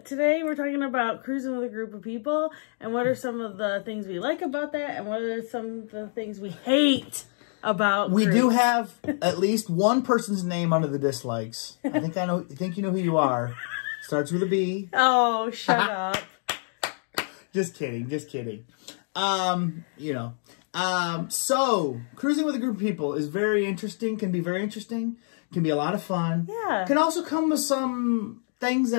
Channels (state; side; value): silent; right; 58 dB below the other